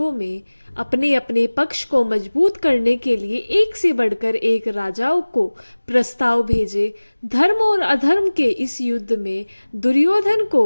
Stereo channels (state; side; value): inverted; both; correlation -1.00